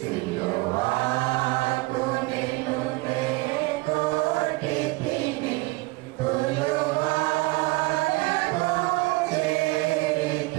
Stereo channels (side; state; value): left; quieter; 22.9 dB